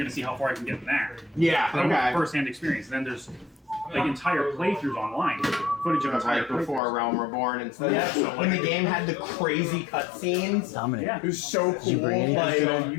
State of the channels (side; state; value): right; drops out; at 6.8 s